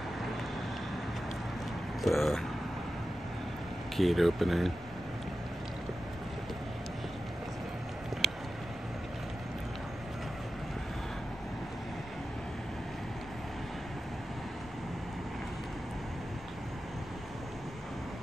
The gate opening.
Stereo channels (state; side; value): normal; both; correlation 0.92